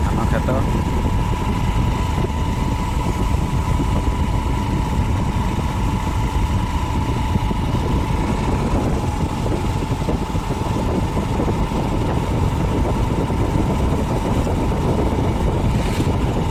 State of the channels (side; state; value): both; identical; correlation 1.00